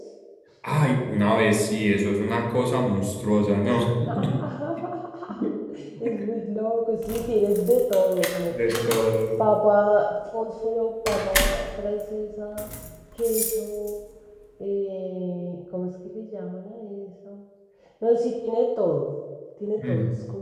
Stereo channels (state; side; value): identical; both; correlation 1.00